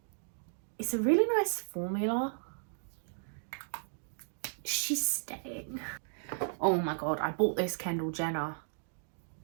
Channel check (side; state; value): left; silent; digital silence